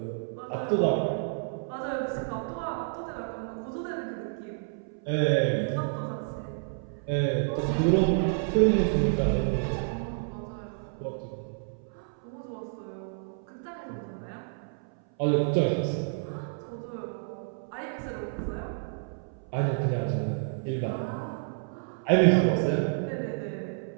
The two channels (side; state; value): left; silent; 58 dB below the other